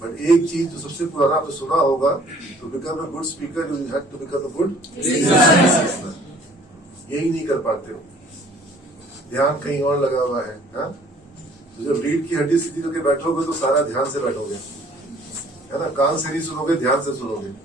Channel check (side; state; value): both; normal; correlation 0.55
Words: But एक चीज जो सबसे पुराना आपने सुना होगा, to become a good speaker you have to become a good listener. यही नहीं कर पाते हो, ध्यान कहीं और लगा हुआ है। हाँ, तो जब रीढ़ की हड्डी सीधी करके बैठोगे तो सारा ध्यान से बैठोगे, है ना, कान से नहीं सुनोगे, ध्यान से सुनोगे।